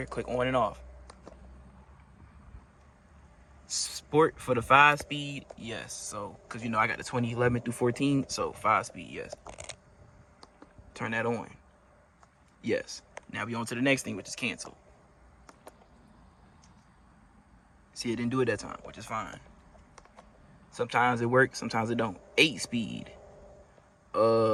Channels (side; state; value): both; identical; correlation 1.00